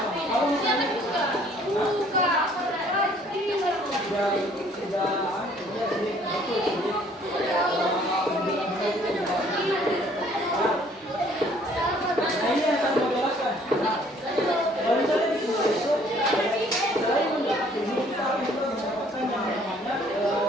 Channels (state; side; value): normal; both; correlation 0.59